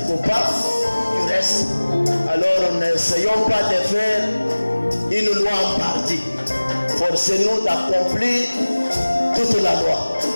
coupable du reste. Alors n'essayons pas de faire une loi en partie. Forcez-nous d'accomplir toute la loi.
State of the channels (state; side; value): inverted; both; correlation -1.00